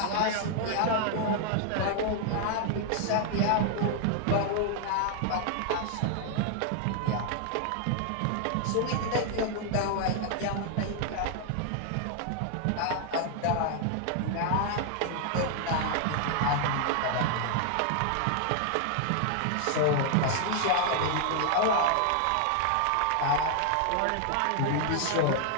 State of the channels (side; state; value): both; different; correlation 0.00